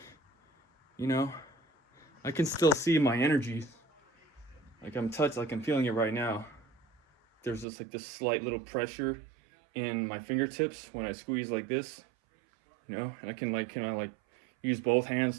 I can still see my energy. Like I'm feeling it right now. There's just like this slight little pressure in my fingertips when I squeeze like this, and I can use both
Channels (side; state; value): left; drops out; at 7.7 s